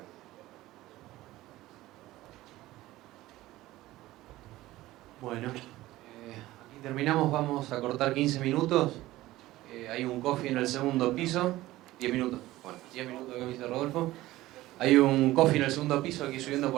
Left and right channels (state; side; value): quieter; left; 16.9 dB